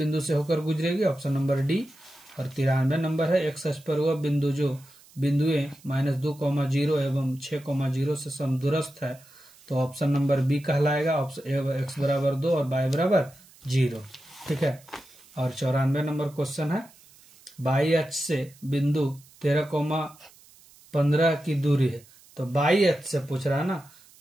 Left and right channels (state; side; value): noise; right; hiss, 26 dB below the sound